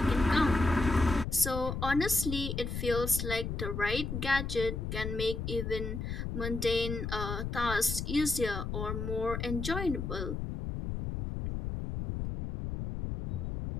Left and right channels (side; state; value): left; noise; rumble, 4 dB below the sound